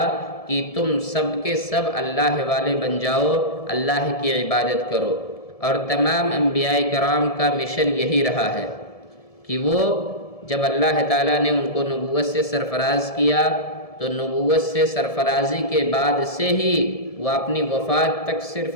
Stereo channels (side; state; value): right; late; 1.7 ms